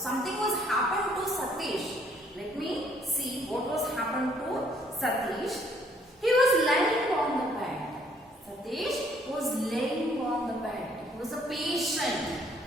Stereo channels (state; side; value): normal; both; correlation 0.64